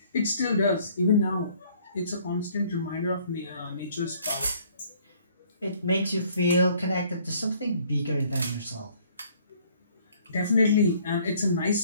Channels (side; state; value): both; inverted; correlation -0.60